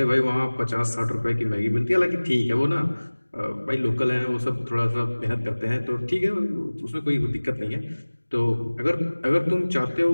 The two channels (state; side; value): inverted; both; correlation -1.00